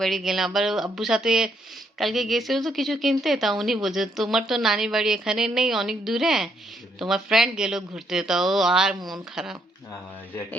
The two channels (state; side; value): normal; both; correlation 0.73